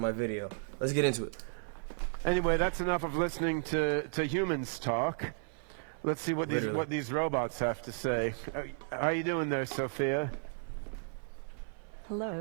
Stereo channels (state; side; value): silent; left; 55 dB below the other